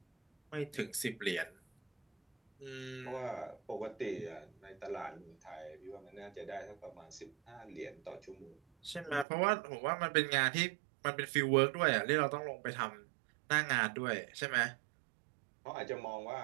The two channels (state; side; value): drops out; left; at 9.2 s